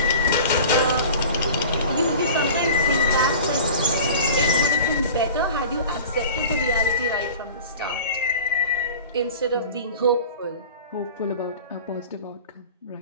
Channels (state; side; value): inverted; both; correlation -0.40